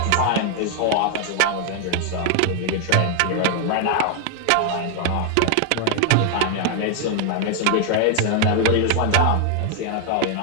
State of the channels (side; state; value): both; different; correlation 0.00